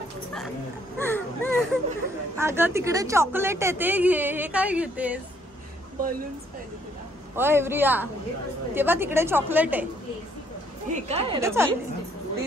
अगं तिकडे चॉकलेट आहे ते घे. हे काय घेतेस? बलून्स पाहिजे तुला. होय प्रिया तेव्हा तिकडे चॉकलेट आहे. हे काय तेच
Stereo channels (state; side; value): normal; both; correlation 0.66